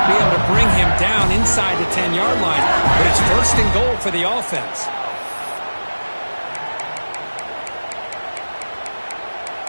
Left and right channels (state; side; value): inverted; both; correlation -1.00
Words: be able to bring him down inside the 10-yard line, but it's first and goal for the offense.